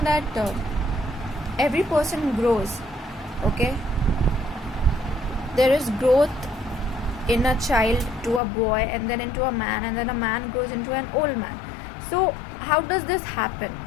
that every person grows, okay? There is growth in a child to a boy, and then into a man, and then a man grows into an old man. So how does this happen?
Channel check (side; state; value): right; drops out; at 8.4 s